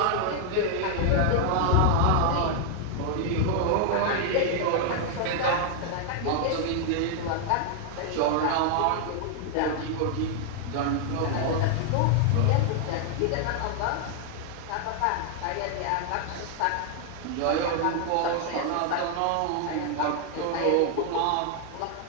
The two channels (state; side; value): different; both; correlation 0.00